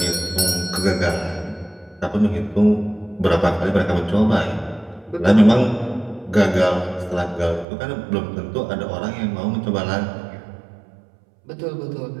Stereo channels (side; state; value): left; drops out; at 7.7 s